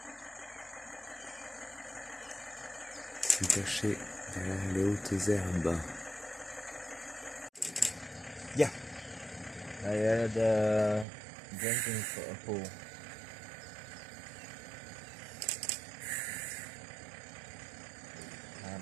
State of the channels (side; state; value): left; drops out; at 11.1 s